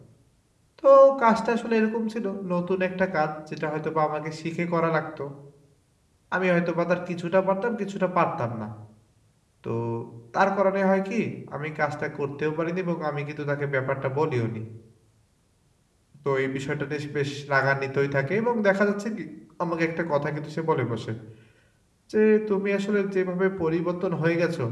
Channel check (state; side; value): identical; both; correlation 1.00